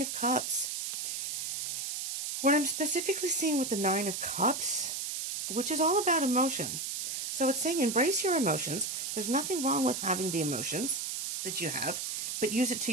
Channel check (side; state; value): right; noise; hiss, 3 dB below the sound